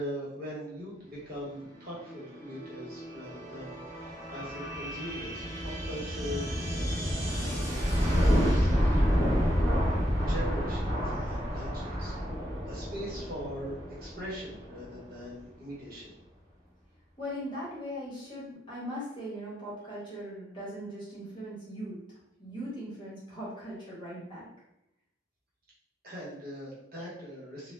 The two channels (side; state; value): both; normal; correlation 0.81